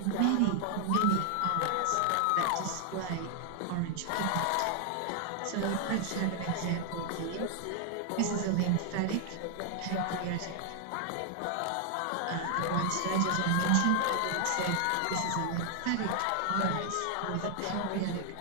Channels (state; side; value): different; both; correlation 0.00